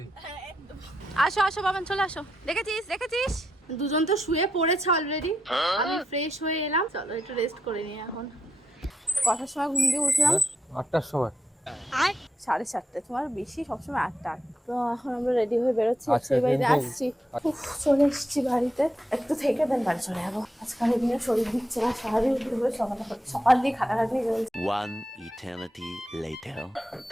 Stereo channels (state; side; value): normal; both; correlation 0.84